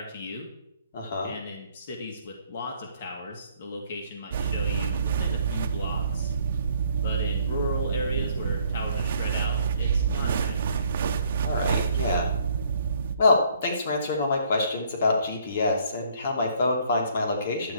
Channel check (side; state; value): both; inverted; correlation -0.64